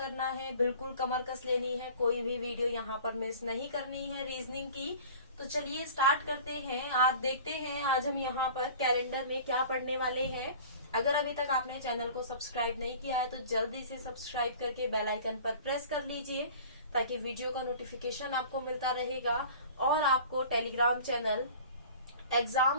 है, बिल्कुल कमर कस लेनी है। कोई भी वीडियो यहाँ पर मिस नहीं करनी है रीजनिंग की। तो चलिए स्टार्ट करते हैं। आज देखते हैं आज हम यहाँ पर कैलेंडर में क्या पढ़ने वाले हैं। अगर अभी तक आपने चैनल को सब्सक्राइब नहीं किया है तो जल्दी से सब्सक्राइब करके बेल आइकन पर प्रेस कर लीजिए, ताकि वीडियो का नोटिफिकेशन आपको मिलता रहेगा। और आपको टेलीग्राम चैनल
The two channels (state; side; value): inverted; both; correlation -0.43